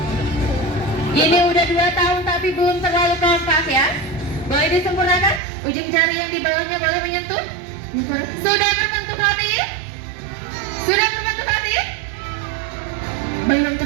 Ini udah 2 tahun tapi belum terlalu kompak ya. Boleh disempurnakan? Ujung jari yang di bawahnya boleh menyentuh? Sudah berbentuk hati? Sudah berbentuk hati? Belum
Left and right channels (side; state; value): left; drops out; at 5.4 s